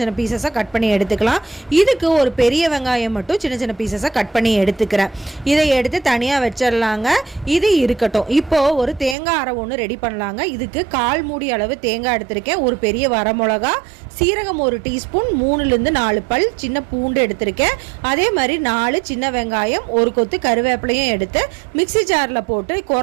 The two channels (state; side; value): drops out; left; at 9.2 s